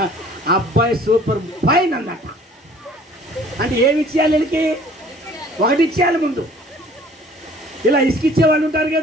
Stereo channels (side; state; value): both; normal; correlation 0.53